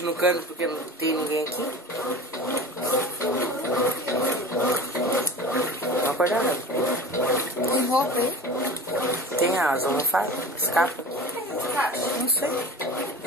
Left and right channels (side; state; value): both; normal; correlation 0.35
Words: no cano porque não tem ninguém aqui. Olha a cor da água. Tem roupa aí? Tem as almofadas, as capas. Não sei.